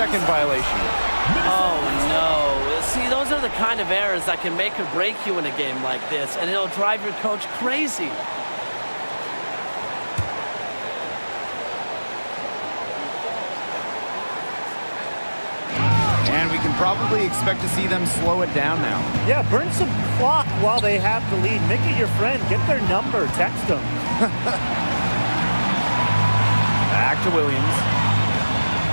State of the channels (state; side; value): inverted; both; correlation -1.00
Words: violation. Oh, no. See, those are the kind of errors that can make or break you in a game like this, and it'll drive your coach crazy. Probably expect to see them slow it down now. Yeah, burn some clock while they have the lead. Make it your friend. Get their number. Text them. Back to Williams.